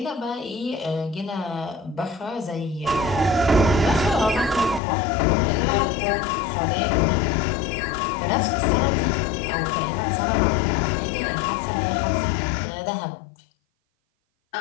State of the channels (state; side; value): drops out; right; at 4.8 s